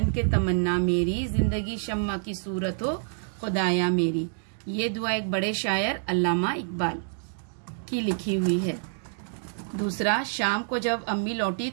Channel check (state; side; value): silent; left; digital silence